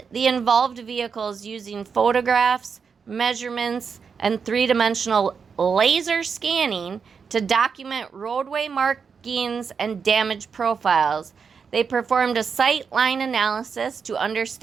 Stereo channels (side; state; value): left; quieter; 6.0 dB